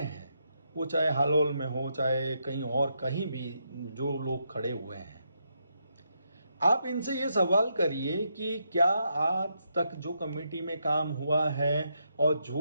हैं, वो चाहे हालोल में हो चाहे कहीं और, कहीं भी जो लोग खड़े हुए हैं, आप इनसे ये सवाल करिए कि क्या आज तक जो कमेटी में काम हुआ है और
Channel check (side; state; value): both; inverted; correlation -0.80